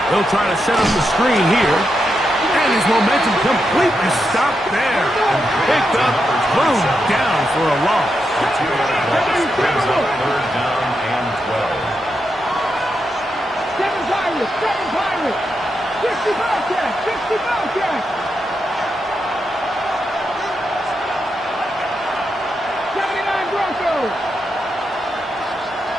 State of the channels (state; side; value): normal; both; correlation 0.85